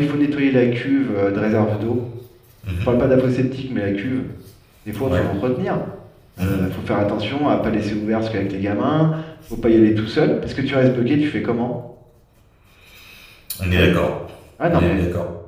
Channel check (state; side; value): identical; both; correlation 1.00